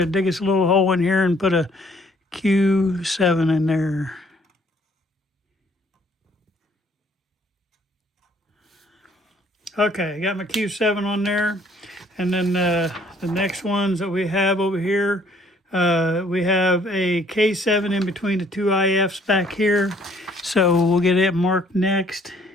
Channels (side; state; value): both; normal; correlation 0.61